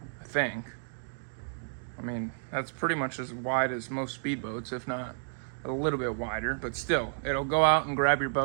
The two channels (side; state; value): left; silent; digital silence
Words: I think. I mean, that's pretty much as wide as most speedboats, if not a little bit wider, but still, it'll go out and grab your